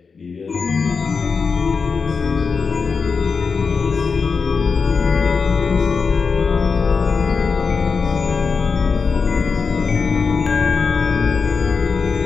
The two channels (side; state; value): right; quieter; 5.2 dB